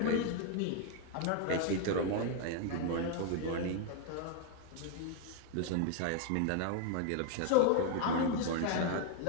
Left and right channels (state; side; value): different; both; correlation 0.01